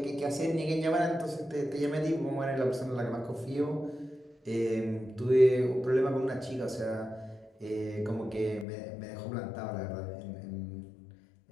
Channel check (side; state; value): right; drops out; at 8.7 s